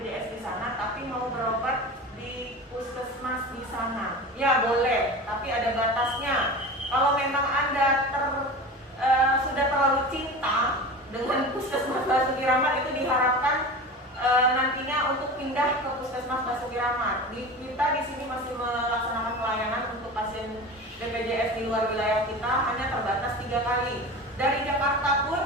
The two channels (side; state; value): both; normal; correlation 0.32